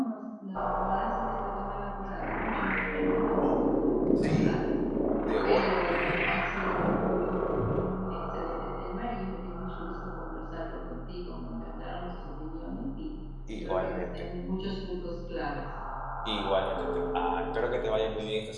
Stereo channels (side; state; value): both; identical; correlation 1.00